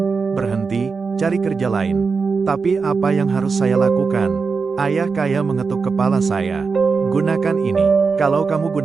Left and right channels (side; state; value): left; quieter; 4.9 dB